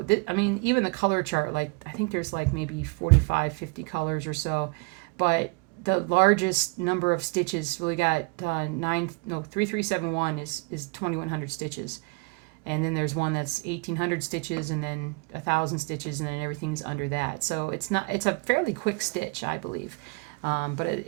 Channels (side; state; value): left; quieter; 30.0 dB